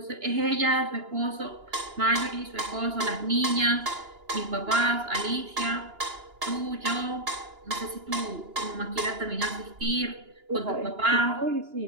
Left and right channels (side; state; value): left; late; 2.9 ms